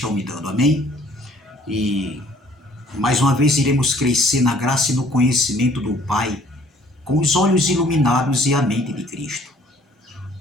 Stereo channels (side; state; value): both; normal; correlation 0.58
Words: me dando. Amém? E mais uma vez iremos crescer na graça e no conhecimento do Pai, com os olhos iluminados e a mente de Cristo.